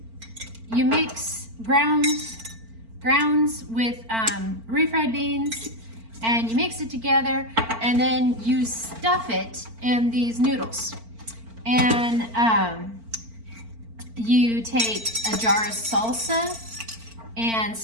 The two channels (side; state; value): left; late; 4.4 ms